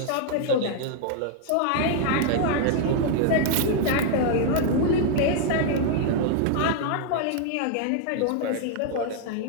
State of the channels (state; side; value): different; both; correlation 0.00